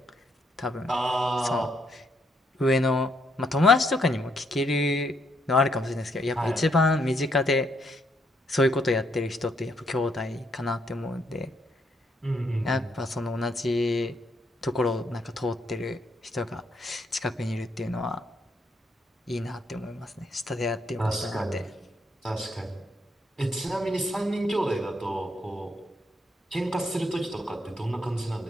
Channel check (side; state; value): both; normal; correlation 0.74